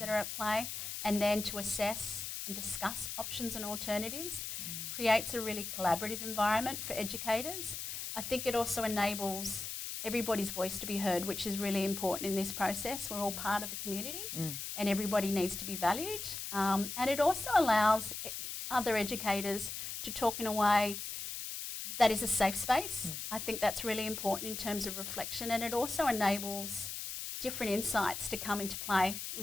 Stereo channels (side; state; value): left; noise; hiss, 6 dB below the sound